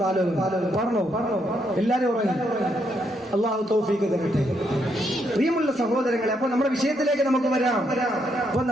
കാലം പറഞ്ഞോ? എല്ലാരും ഉറങ്ങി. അല്ലാഹു തൗഫീഖ് തരട്ടെ. പ്രിയമുള്ള സഹോദരങ്ങളെ, അപ്പൊ നമ്മുടെ വിഷയത്തിലേക്ക് നമുക്ക് വരാം. അപ്പൊ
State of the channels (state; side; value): normal; both; correlation 0.76